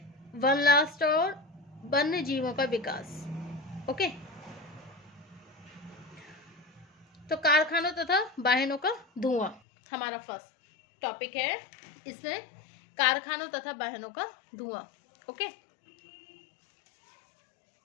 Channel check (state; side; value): drops out; right; at 9.6 s